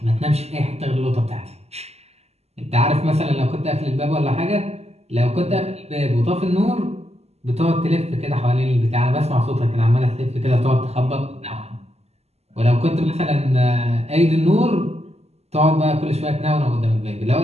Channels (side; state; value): left; late; 0.30 ms